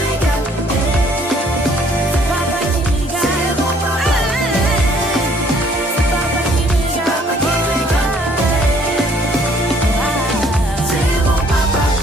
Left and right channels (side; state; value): both; normal; correlation 0.61